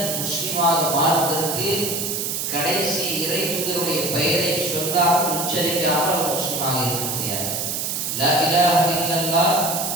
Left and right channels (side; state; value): right; noise; hiss, 2 dB below the sound